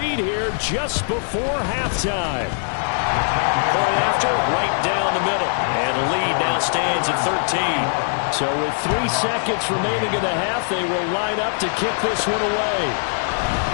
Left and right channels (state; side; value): silent; right; 62 dB below the other